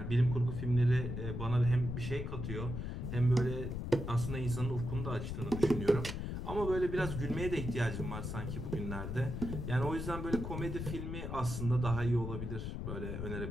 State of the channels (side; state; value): left; noise; rumble, 4 dB below the sound